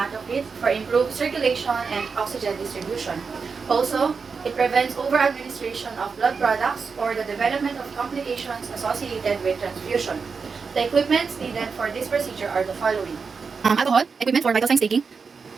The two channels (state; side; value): quieter; left; 5.2 dB